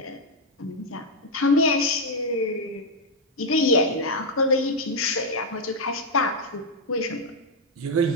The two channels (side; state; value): both; normal; correlation 0.00